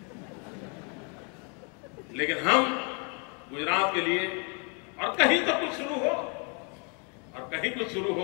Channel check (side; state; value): right; quieter; 36.6 dB